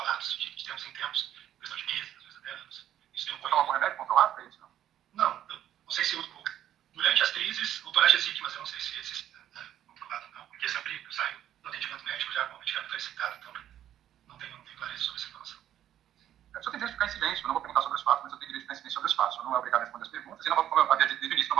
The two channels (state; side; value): quieter; left; 11.3 dB